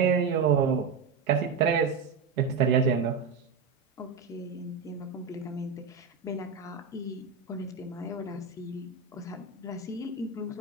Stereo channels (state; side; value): quieter; left; 5.4 dB